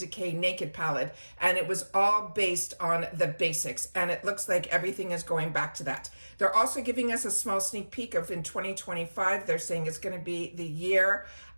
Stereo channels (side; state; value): both; inverted; correlation -1.00